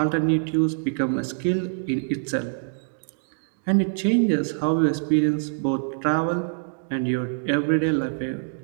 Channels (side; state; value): left; silent; digital silence